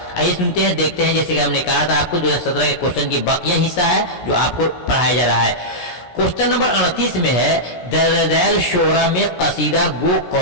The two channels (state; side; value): late; right; 17 ms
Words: आइए सुनते हैं, देखते हैं। जैसे कि हमने कहा था आपको 2017 के क्वेश्चन की बाकिया हिस्सा है जो आपको पढ़ाया जा रहा है। क्वेश्चन नंबर 38 में है, दर्ज शोरा में कसीदा गो